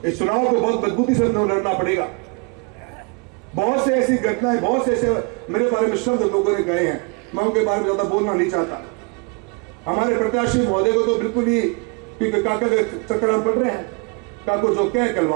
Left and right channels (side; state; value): left; quieter; 32.7 dB